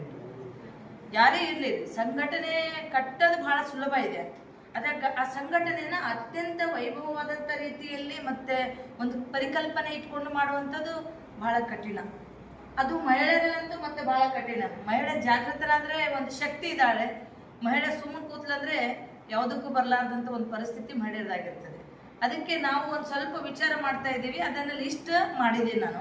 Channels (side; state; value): both; identical; correlation 1.00